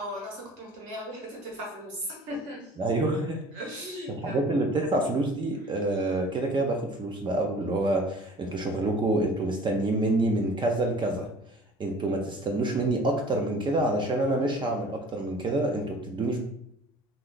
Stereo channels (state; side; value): normal; both; correlation 0.48